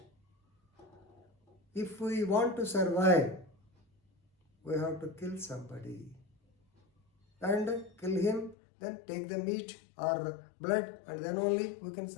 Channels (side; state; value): right; drops out; at 8.6 s